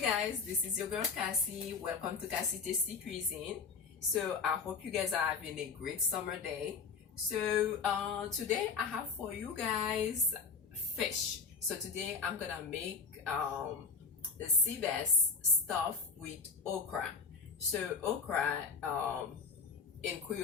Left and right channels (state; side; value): quieter; right; 5.0 dB